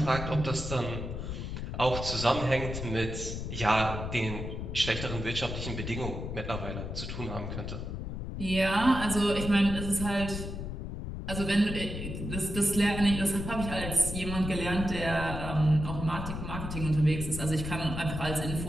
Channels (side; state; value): left; noise; rumble, 6 dB below the sound